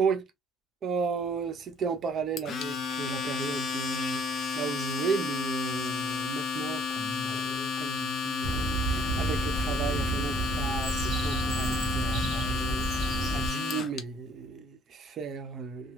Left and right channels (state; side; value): normal; both; correlation 0.60